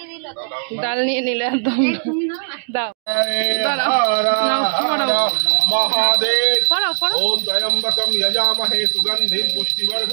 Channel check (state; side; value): silent; left; digital silence